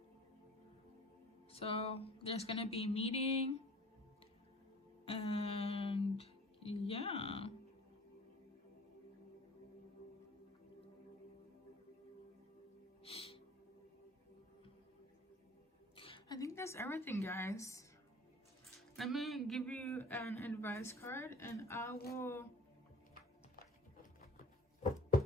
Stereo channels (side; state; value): both; normal; correlation 0.46